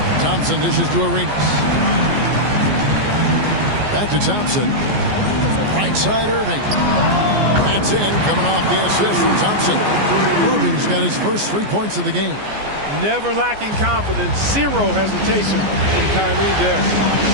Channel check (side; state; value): left; late; 14 ms